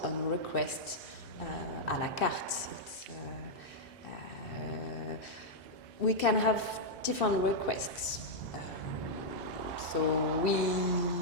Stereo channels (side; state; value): both; normal; correlation -0.05